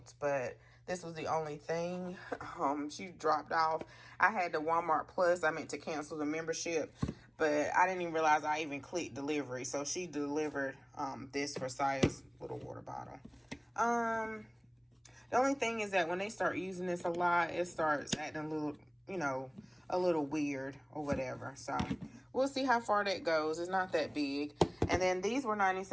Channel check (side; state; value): both; identical; correlation 1.00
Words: but this was the only thing. She dropped off. I had the Walmart Plus. I meant to cancel the membership, but I didn't even realize I even clicked delivery. So she delivered this for Saya's little water bottle. The only thing is that when they start using this a lot, it starts acting a little you know, a little weird or whatever. So we'll see how far that goes. It's not that big. And then these were